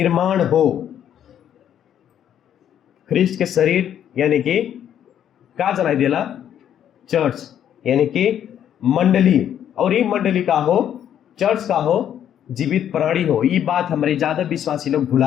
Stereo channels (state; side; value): quieter; right; 9.9 dB